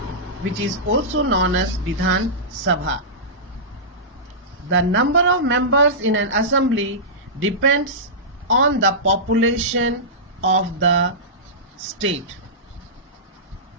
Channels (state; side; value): normal; both; correlation -0.17